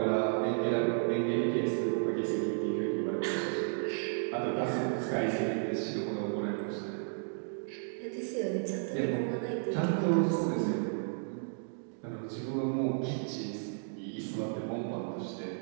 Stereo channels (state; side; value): silent; left; digital silence